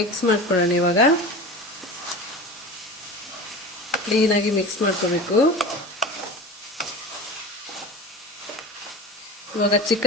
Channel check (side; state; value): both; normal; correlation 0.32